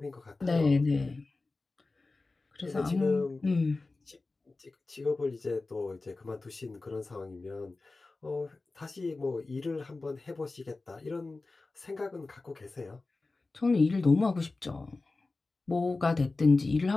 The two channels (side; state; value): right; quieter; 3.5 dB